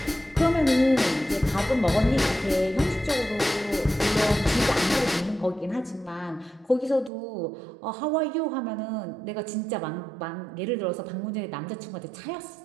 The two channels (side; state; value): left; drops out; at 7.1 s